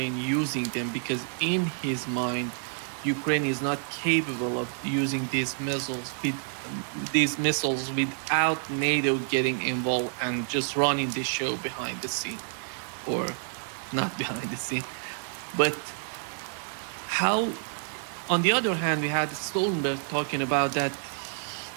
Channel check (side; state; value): left; silent; 59 dB below the other